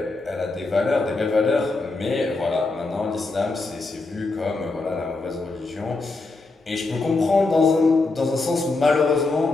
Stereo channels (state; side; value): quieter; right; 3.4 dB